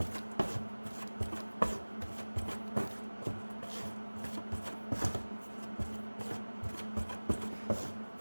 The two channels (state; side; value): inverted; both; correlation -1.00